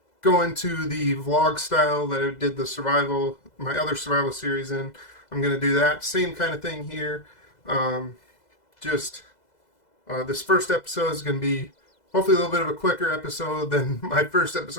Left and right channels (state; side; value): late; right; 2.0 ms